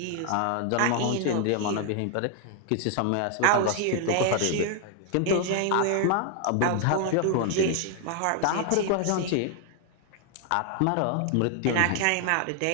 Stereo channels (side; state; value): both; different; correlation 0.00